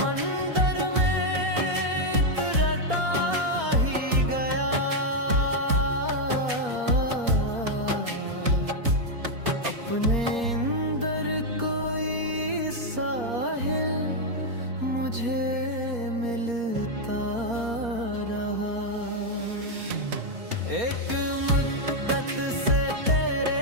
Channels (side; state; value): left; late; 4.3 ms